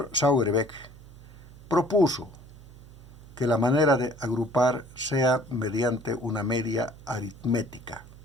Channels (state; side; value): noise; right; hum, 19 dB below the sound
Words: Sauerbeck propuso que la manera de agrupar sea mediante una media aritmética.